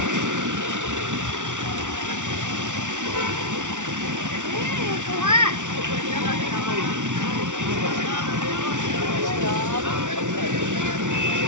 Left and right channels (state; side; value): late; left; 0.86 ms